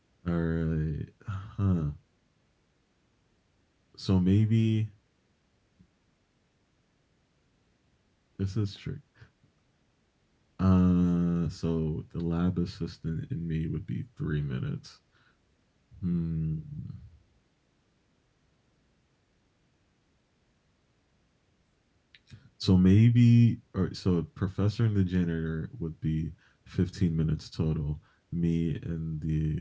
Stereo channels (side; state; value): both; identical; correlation 1.00